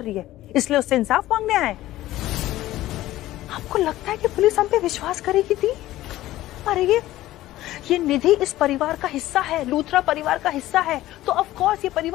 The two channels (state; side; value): quieter; right; 15.4 dB